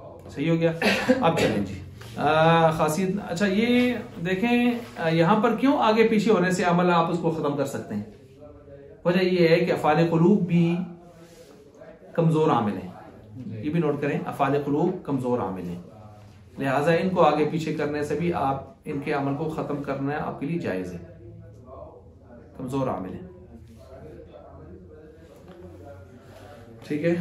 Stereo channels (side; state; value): both; identical; correlation 1.00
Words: सही हो गया। अब चलें जी, खासियत। अच्छा, ये देखें यहां पर क्यों आगे पीछे होने से अमल आप उसको खत्म कर सकते हैं। वजह ये है कि अफ़ाल क़ुलूब भी कमजोर आमिल है। ये भी नोट करें, अफ़ाल क़ुलूब कमजोर आमिल है, लिहाजा इनको आगे पीछे करने से भी आप इनके अमल को खत्म करना आपके लिए जायज है, कमजोर आमिल है। ठीक है।